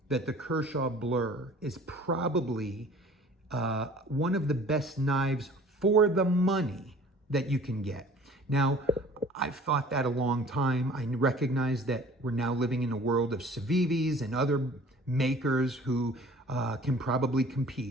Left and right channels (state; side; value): normal; both; correlation 0.49